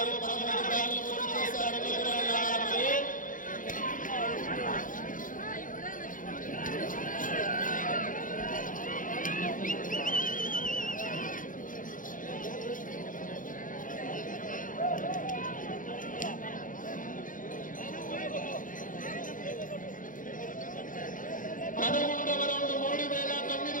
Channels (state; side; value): late; right; 0.39 ms